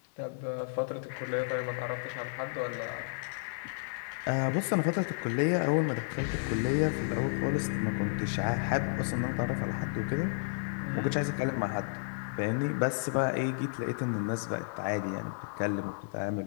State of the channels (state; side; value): silent; right; digital silence